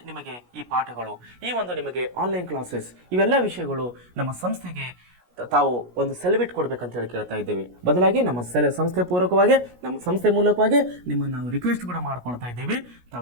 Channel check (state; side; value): late; left; 17 ms